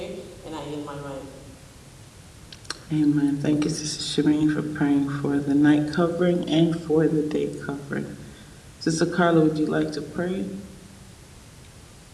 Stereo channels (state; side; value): identical; both; correlation 1.00